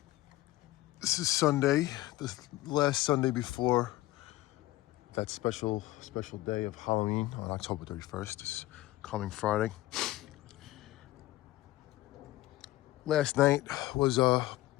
This is Sunday, the last Sunday before that special day of Halloween on October 31st. This coming Friday. Last night was I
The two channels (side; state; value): right; quieter; 17.0 dB